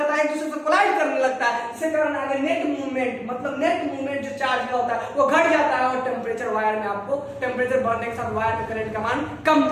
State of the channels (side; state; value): both; identical; correlation 1.00